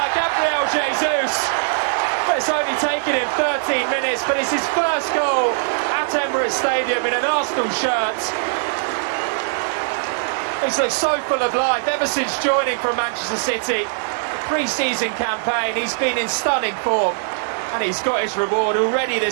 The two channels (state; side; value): silent; left; digital silence